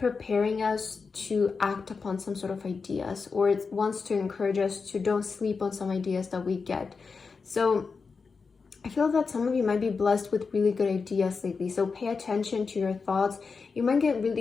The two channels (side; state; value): right; quieter; 4.9 dB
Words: us to act upon some sort of ideas, or it wants to encourage us to don't sleep on some ideas that we get. So I feel that some of you might be blessed with really good ideas lately. So pay attention to your thoughts. You might get